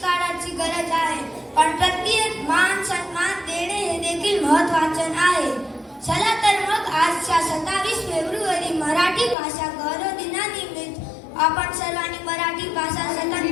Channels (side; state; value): right; drops out; at 9.3 s